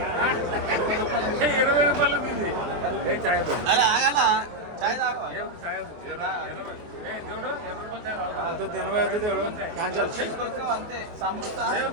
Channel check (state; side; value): late; left; 23 ms